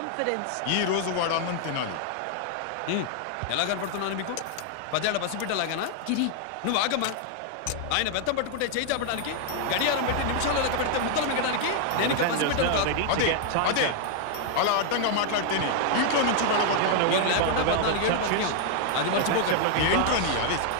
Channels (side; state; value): both; different; correlation 0.00